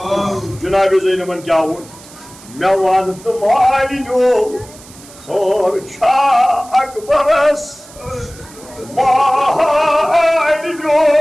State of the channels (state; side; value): noise; right; hiss, 21 dB below the sound